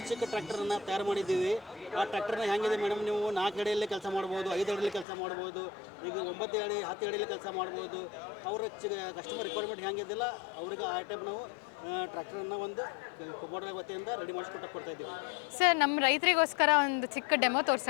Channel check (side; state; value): right; drops out; at 5.1 s